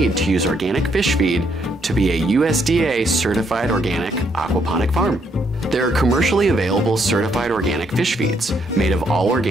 to use organic fish feed to be a USDA certified organic aquaponic farm. There are commercially available certified organic fish feeds made of all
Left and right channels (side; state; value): both; normal; correlation 0.73